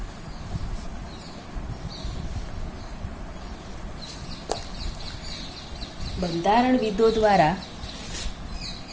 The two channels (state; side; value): identical; both; correlation 1.00